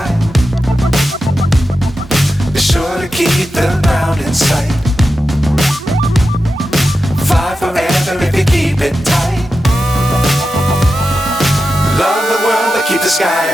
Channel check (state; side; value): normal; both; correlation 0.91